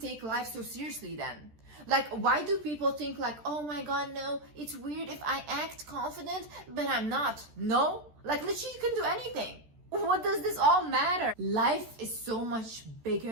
life so seriously then? Like, why do people think like, oh my God, no, it's weird if I act confident, but I'm not? No, like literally you can do anything. What does this all matter? Life is so much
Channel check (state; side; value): late; left; 13 ms